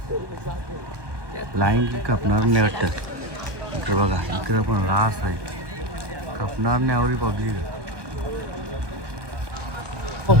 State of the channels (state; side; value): late; left; 1.2 ms